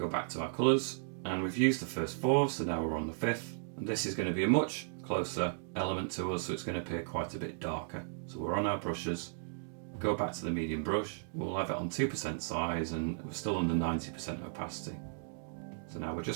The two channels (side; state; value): left; silent; digital silence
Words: back to our colours, and we've used the first four, so now we're on the fifth. And this is going to be a much closer element to us, so it's going to appear quite a bit darker. So we're on our brushes, go back to the medium brush, we'll have it on 2% size and we're still under 90% opacity. So now we're